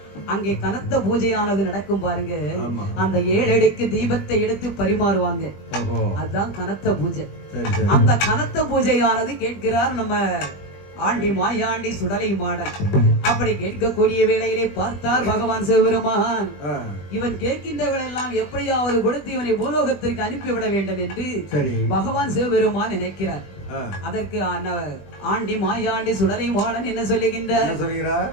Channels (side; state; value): right; late; 21 ms